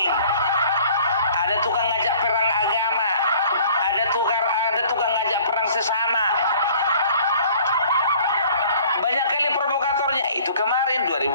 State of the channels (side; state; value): both; inverted; correlation -0.52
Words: ada tukang ngajak perang agama, ada tukang ngajak perang sesama. Banyak kali provokatornya. Itu kemarin